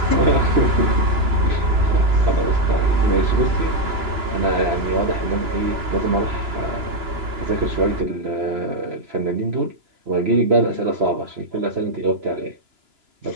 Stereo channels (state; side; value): late; left; 2.9 ms